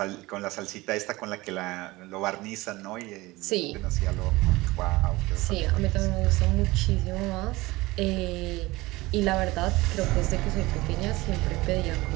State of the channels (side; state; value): left; quieter; 20.5 dB